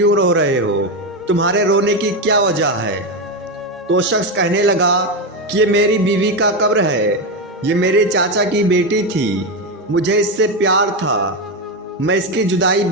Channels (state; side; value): normal; both; correlation 0.12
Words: رو رہے ہو؟ تمہارے رونے کی کیا وجہ ہے؟ تو شخص کہنے لگا کہ یہ میری بیوی کا قبر ہے، یہ میرے چاچا کی بیٹی تھی، مجھے اس سے پیار تھا، میں اس کی جدائی